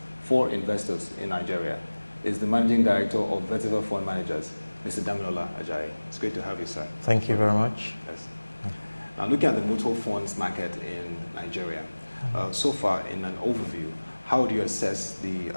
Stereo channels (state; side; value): inverted; both; correlation -1.00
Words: for investors in Nigeria is the Managing Director of Vetiva Fund Managers, Mr. Damilola Ajayi. It's great to have you, sir. Thank you very much. Yes. Now, looking at the mutual funds market in Nigeria, so far in an overview, how do you assess